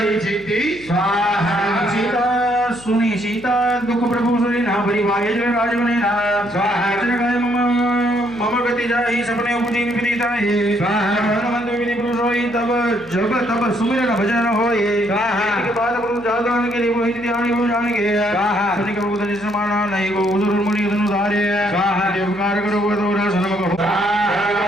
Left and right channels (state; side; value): noise; left; hum, 21 dB below the sound